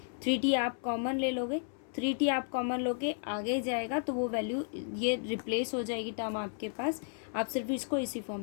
3t आप कॉमन ले लोगे, 3t आप कॉमन लोगे, आगे जाएगा तो वो वैल्यू ये रिप्लेस हो जाएगी टर्म आपके पास। आप सिर्फ इसको इसी फॉर्म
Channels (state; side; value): silent; right; 56 dB below the other